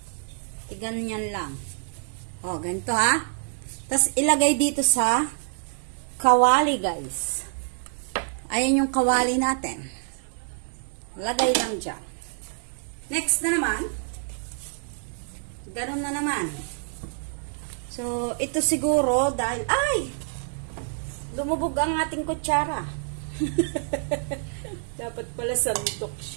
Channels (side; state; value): left; silent; digital silence